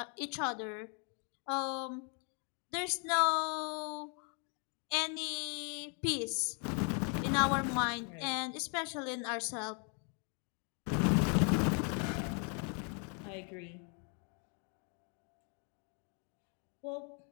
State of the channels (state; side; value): quieter; right; 39.4 dB